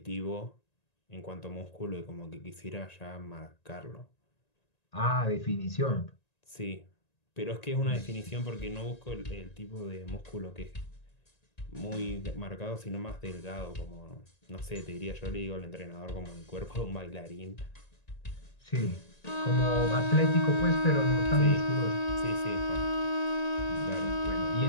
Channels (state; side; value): late; right; 1.9 ms